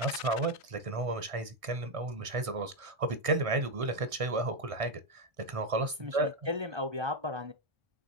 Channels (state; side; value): late; left; 1.6 ms